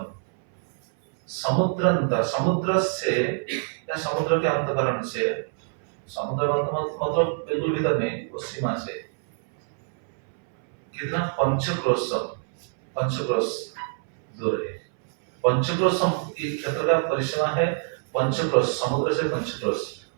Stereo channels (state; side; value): silent; left; 61 dB below the other